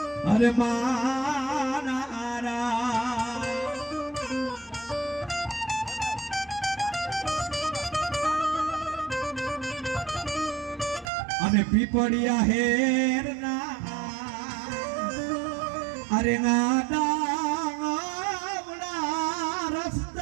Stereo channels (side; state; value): left; drops out; at 11.1 s